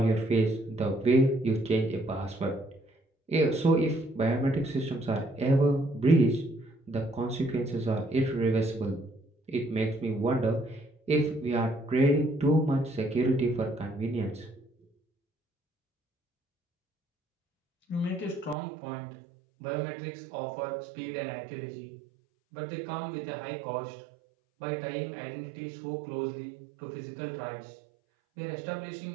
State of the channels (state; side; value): drops out; left; at 18.6 s